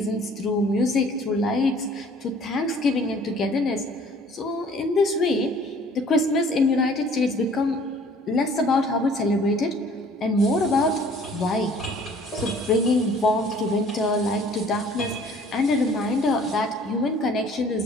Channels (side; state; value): both; normal; correlation 0.54